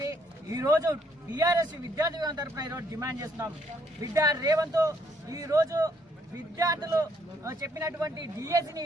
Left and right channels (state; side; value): normal; both; correlation 0.70